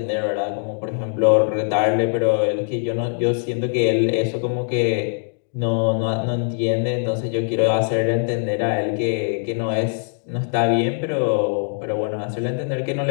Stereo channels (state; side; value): silent; right; digital silence